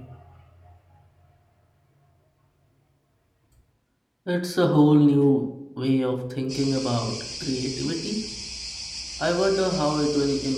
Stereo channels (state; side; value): identical; both; correlation 1.00